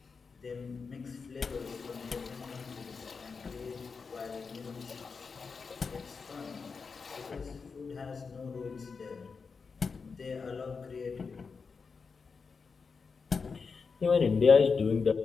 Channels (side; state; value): right; quieter; 5.1 dB